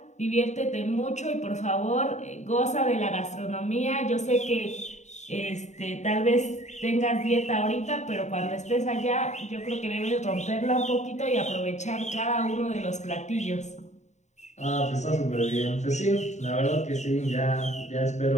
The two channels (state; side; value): late; right; 0.34 ms